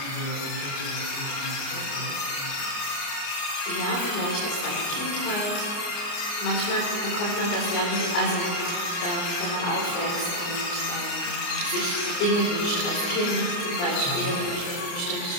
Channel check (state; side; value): late; right; 29 ms